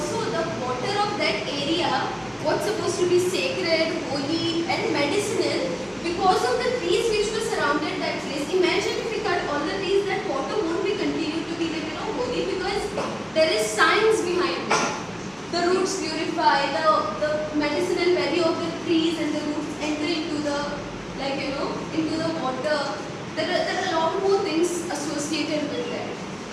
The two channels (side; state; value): both; identical; correlation 1.00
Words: the water of that area, what's supposed to be sacred, holy, and medicinal, because of the trees which were surrounded that place. Imagine if we cut all the trees, that water won't be continued to be holy, because there is science behind it. The roots purify, the medicinal value of the trees, and the roots enter into the into the water. There are a lot more things associated with that.